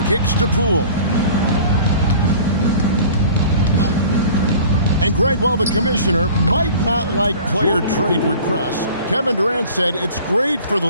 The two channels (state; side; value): inverted; both; correlation -0.44